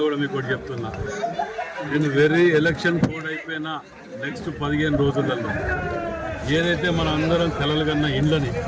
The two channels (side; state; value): both; identical; correlation 1.00